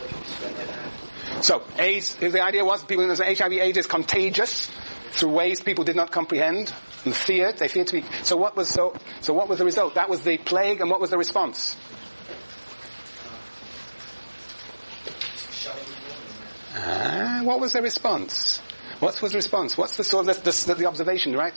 So, AIDS, the idea was people know that HIV/AIDS is contagious through ways people did not comprehend and feared. They feared to be. So what was the result? That was the plague, and what was the response? What was the response? What was the response? What's the sort of the observation, right?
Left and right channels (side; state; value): both; inverted; correlation -1.00